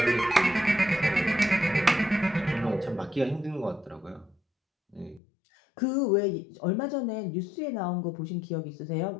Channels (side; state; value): right; drops out; at 5.2 s